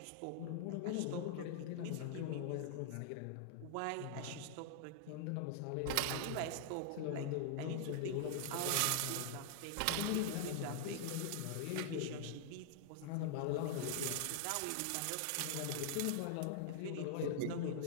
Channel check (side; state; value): both; different; correlation -0.01